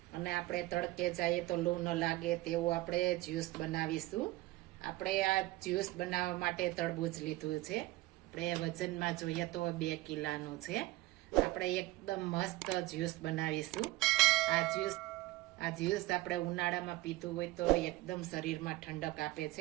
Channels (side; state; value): left; quieter; 18.9 dB